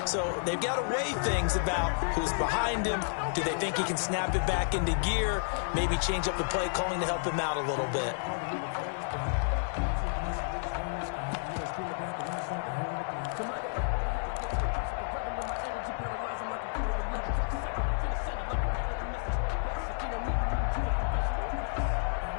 So they've got to weigh things about who's behind him. Do they think he can snap it back into gear? Maybe change up the play calling to help him out a little bit.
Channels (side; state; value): right; silent; 57 dB below the other